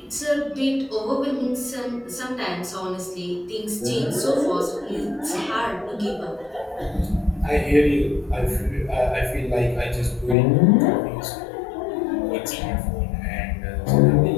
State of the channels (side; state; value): right; drops out; at 10.4 s